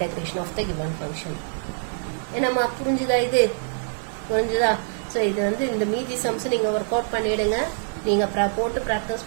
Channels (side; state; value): left; silent; digital silence